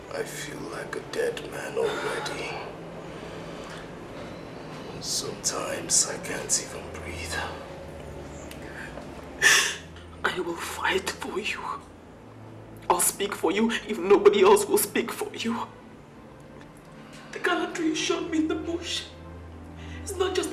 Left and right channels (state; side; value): identical; both; correlation 1.00